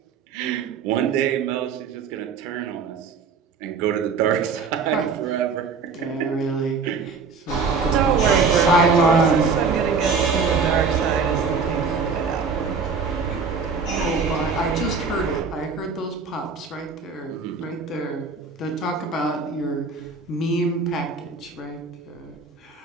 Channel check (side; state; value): left; quieter; 5.0 dB